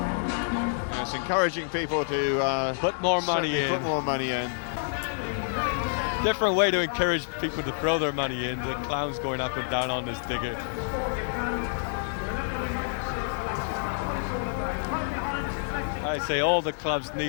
It's encouraging people to put more money in. Put more money in. Different way to encourage people to throw their money in. The clowns going up and down on this digger. I say all the clubs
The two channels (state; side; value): silent; right; digital silence